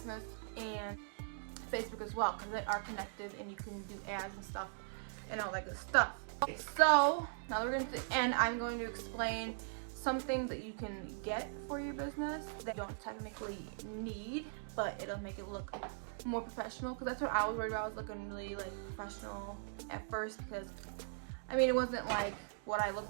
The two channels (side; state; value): left; silent; digital silence